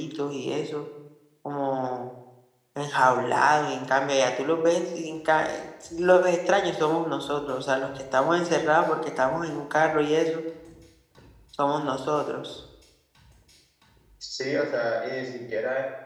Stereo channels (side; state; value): both; identical; correlation 1.00